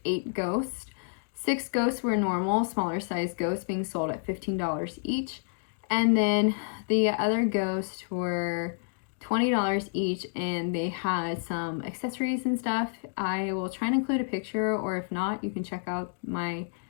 8 ghosts. 6 ghosts were normal, smaller size ghosts being sold at $15 each. And then the other ghosts were $20 each, and they had some accessories and stuff. I will try and include a picture, or if not, you can check out my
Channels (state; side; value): silent; right; digital silence